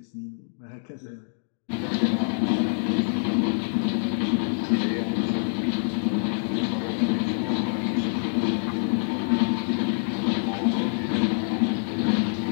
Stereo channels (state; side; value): silent; right; 60 dB below the other